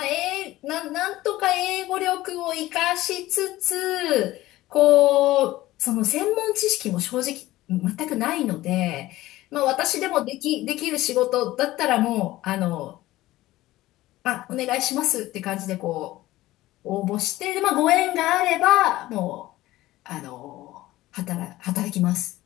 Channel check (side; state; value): right; quieter; 16.8 dB